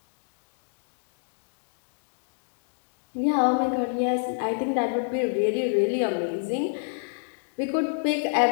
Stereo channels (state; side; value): silent; right; digital silence